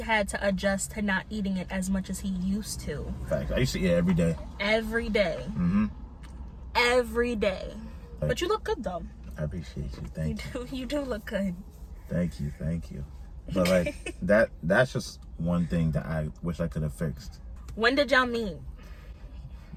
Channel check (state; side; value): identical; both; correlation 1.00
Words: had to adjust to not eating it as much as he used to. Fact. I used to eat it every day. Every day. Every day. Like, but you look good though. I appreciate you. Thank you. You do look good. Thank you. But like that's just one thing that I wish I could have fixed. When did y'all meet?